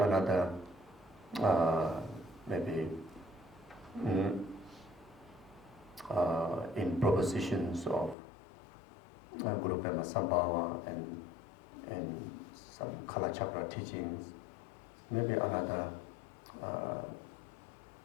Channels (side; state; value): right; drops out; at 8.2 s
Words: in propositions of Guru Pema Sambhava and some Kala Chakra teachings, maybe another